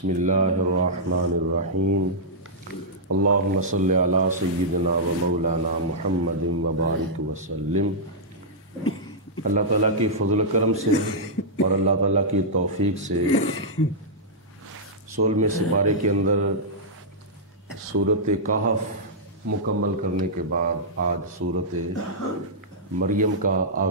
اللہ الرحمن الرحیم اللہم صلی علی سیدنا و مولانا محمد وبارک وسلم۔ اللہ تعالیٰ کی فضل و کرم سے اور اللہ تعالیٰ کی توفیق سے 16ویں سپارے کے اندر سورۃ کہف مکمل کرنے کے بعد آج سورۃ مریم کا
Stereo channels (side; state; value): both; normal; correlation -0.11